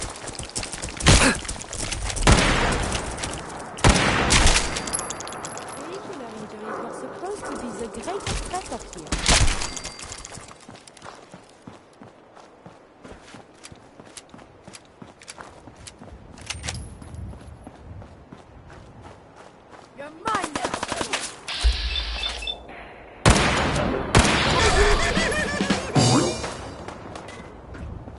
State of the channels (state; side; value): identical; both; correlation 1.00